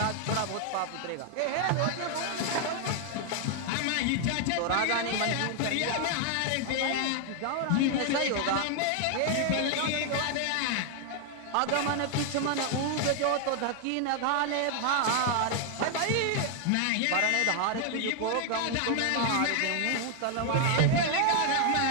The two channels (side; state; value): both; different; correlation 0.00